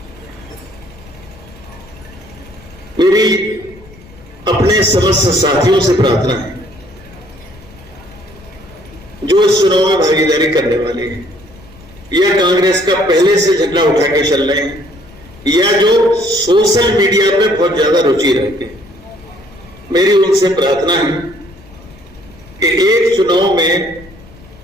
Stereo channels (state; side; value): noise; left; rumble, 23 dB below the sound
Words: मेरी अपने समस्त साथियों से प्रार्थना है जो इस चुनाव में भागीदारी करने वाले हैं या कांग्रेस का पहले से झंडा उठा के चल रहे हैं या जो सोशल मीडिया पे बहुत ज्यादा रुचि रखते हैं, मेरी उनसे प्रार्थना है कि एक चुनाव में